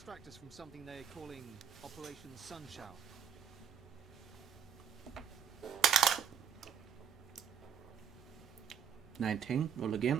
us from something they're calling Operation Sunshower. $19. Roll again.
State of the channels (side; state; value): left; quieter; 8.3 dB